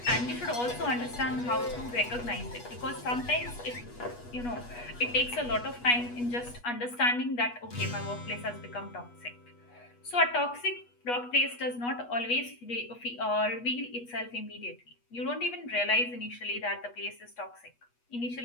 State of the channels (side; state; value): right; late; 8.3 ms